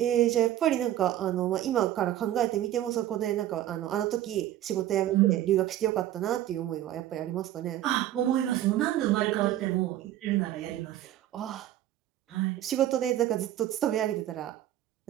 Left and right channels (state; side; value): quieter; left; 12.9 dB